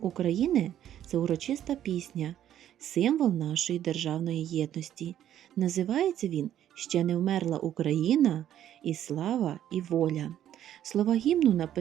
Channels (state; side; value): quieter; left; 11.1 dB